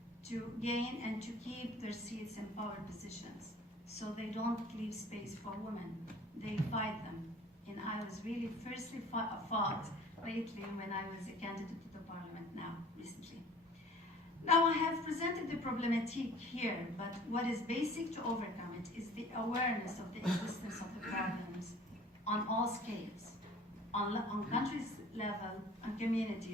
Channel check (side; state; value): both; normal; correlation 0.49